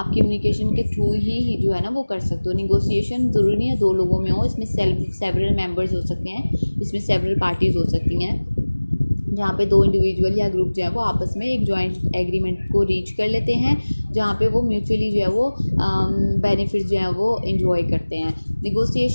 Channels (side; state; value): both; inverted; correlation -1.00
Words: कम्युनिकेशन के थ्रू ही जो है ना वो कर सकते हो। निगोशिएशन ज़रूरी नहीं है दो लोगों में हो, इसमें सेवरल मेंबर्स हो सकते हैं, इसमें सेवरल पार्टीज़ हो सकती हैं, जहाँ पे दो इंडिविजुअल या ग्रुप जो है वो आपस में एक जॉइंट एग्रीमेंट को रीच कर लेते हैं, जहाँ पे वो म्यूचुअली जो है वो बेनिफिट्स जो है वो इंजॉय करते हैं।